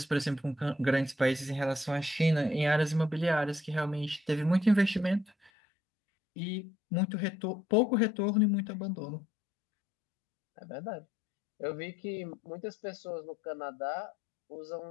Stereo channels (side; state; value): right; drops out; at 5.5 s